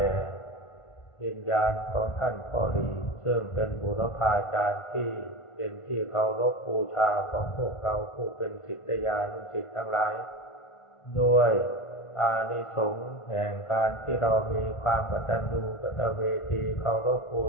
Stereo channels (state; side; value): late; right; 1.5 ms